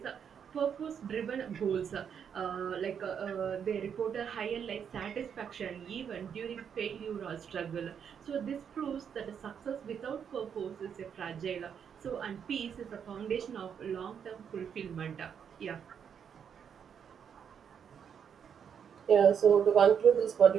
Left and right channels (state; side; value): quieter; left; 7.7 dB